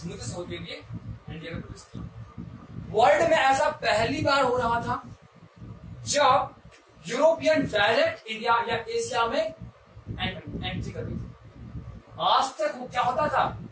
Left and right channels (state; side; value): identical; both; correlation 1.00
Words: से होते हुए इंडिया में प्रवेश किया। वर्ल्ड में ऐसा पहली बार हो रहा था जब यूरोपियन डायरेक्ट इंडिया या एशिया में एंट्री कर रही थी। आज तक वो क्या होता था?